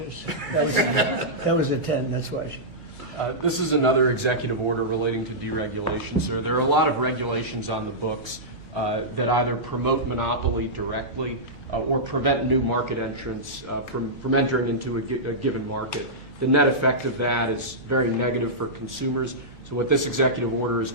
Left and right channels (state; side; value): noise; right; hum, 22 dB below the sound